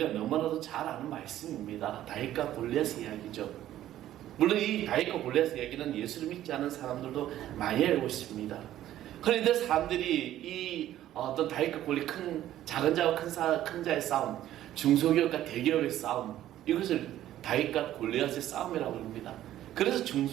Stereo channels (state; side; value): quieter; left; 12.9 dB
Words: 너무나도 잘 아는 말씀입니다. 다윗과 골리앗의 이야기죠. 물론 이 다윗과 골리앗의 이야기는 예수를 믿지 않은 사람들도 많이 알고 있습니다. 그런데 사람들이 이 어떤 다윗과 골리앗, 작은 자와 큰 자의 싸움, 중소기업과 대기업의 싸움, 이것을 다윗과 골리앗의 싸움이라고 합니다. 그래서